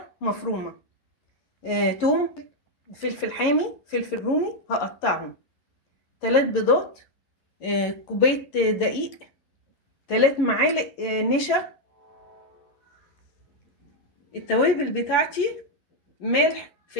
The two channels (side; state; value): right; late; 11 ms